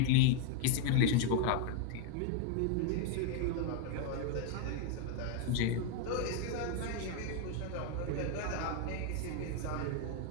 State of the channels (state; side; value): different; both; correlation 0.00